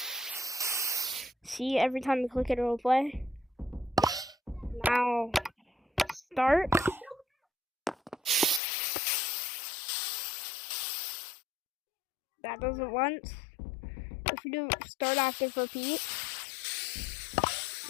See, every time you click it, it'll play. Now, start. That does it once. If you do start active repeat,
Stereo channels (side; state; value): right; drops out; at 8.6 s